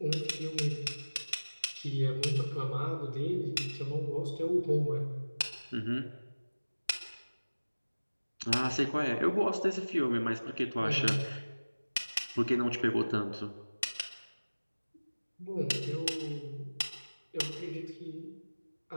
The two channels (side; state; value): both; inverted; correlation -1.00